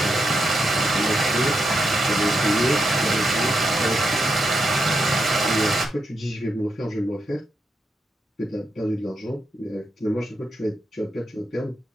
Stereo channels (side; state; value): both; normal; correlation 0.84